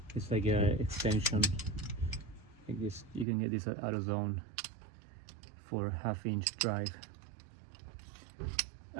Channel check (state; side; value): drops out; left; at 3.2 s